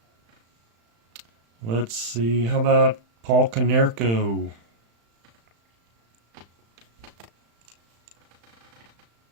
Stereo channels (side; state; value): left; late; 35 ms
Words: Let's see. How about Paul Konerko?